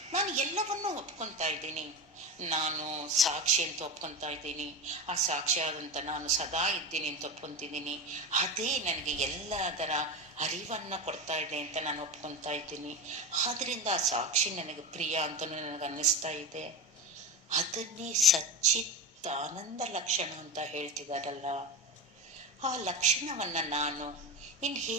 ನಾನು ಎಲ್ಲವನ್ನೂ ಒಪ್ಕೊತಾ ಇದ್ದೀನಿ, ನಾನು ಸಾಕ್ಷಿ ಅಂತ ಒಪ್ಕೊತಾ ಇದ್ದೀನಿ, ಆ ಸಾಕ್ಷಿಯಾದಂಥ ನಾನು ಸದಾ ಇದ್ದೀನಿ ಅಂತ ಒಪ್ಕೊತಿದ್ದೀನಿ, ಅದೇ ನನಗೆ ಎಲ್ಲದರ ಅರಿವನ್ನು ಕೊಡ್ತಾ ಇದೆ ಅಂತ ನಾನು ಒಪ್ಕೊತಾ ಇದ್ದೀನಿ. ಆದ್ದರಿಂದ ಆ ಸಾಕ್ಷಿ ನನಗೆ ಪ್ರಿಯ ಅಂತ ನನಗೆ ಅನ್ನಿಸ್ತಾ ಇದೆ. ಅದನ್ನೇ ಸಚ್ಚಿತ್ ಆನಂದ ಲಕ್ಷಣ ಅಂತ ಹೇಳ್ತಿದಾರಲ್ಲ, ಆ ಲಕ್ಷಣವನ್ನ ನಾನು ಇನ್ನು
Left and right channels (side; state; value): both; normal; correlation 0.22